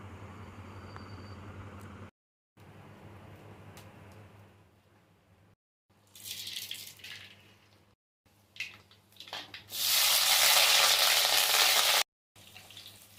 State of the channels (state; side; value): identical; both; correlation 1.00